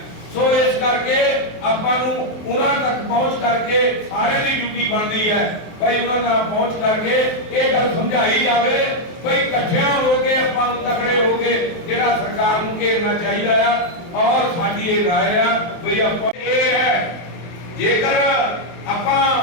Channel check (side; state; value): right; late; 23 ms